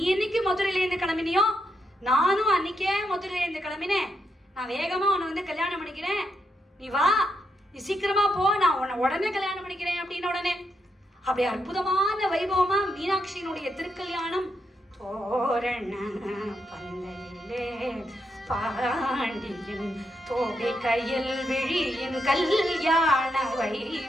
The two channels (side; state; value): both; normal; correlation 0.82